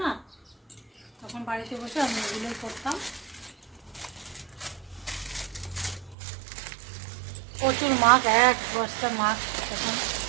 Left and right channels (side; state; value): left; drops out; at 6.2 s